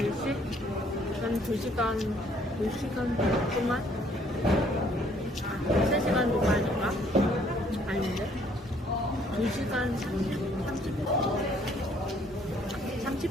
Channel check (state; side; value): normal; both; correlation 0.63